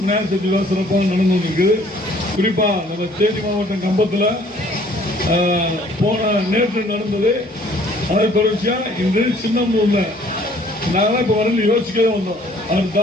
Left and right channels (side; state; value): both; normal; correlation 0.58